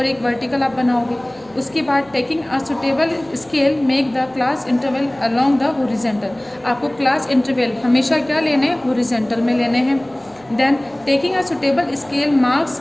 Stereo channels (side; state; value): right; noise; hum, 29 dB below the sound